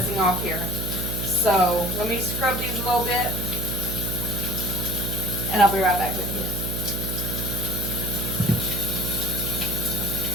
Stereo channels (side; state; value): right; noise; hum, 3 dB below the sound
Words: off here. So let me scrub these a little bit, and I'll be right back with you.